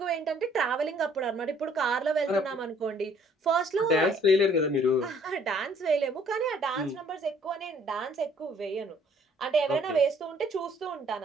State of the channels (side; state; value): both; normal; correlation 0.60